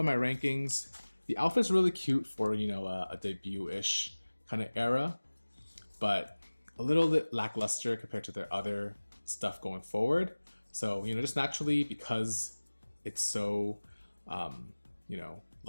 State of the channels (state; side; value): inverted; both; correlation -1.00